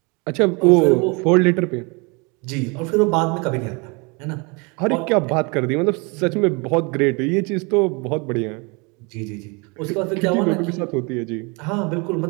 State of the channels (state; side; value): quieter; left; 29.9 dB